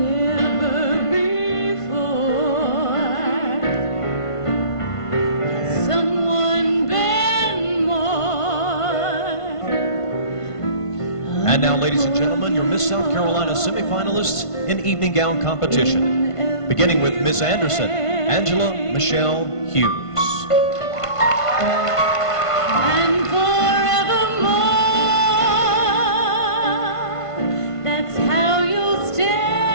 before has someone been more. And now, ladies and gentlemen, your Miss South Carolina semifinalists in evening gown competition. Beginning with Miss Anderson, Angela Michelle Hughes. And forevermore, that's how you'll stay.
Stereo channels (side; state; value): right; late; 1.5 ms